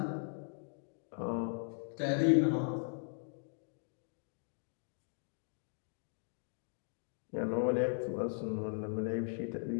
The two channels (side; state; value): right; silent; digital silence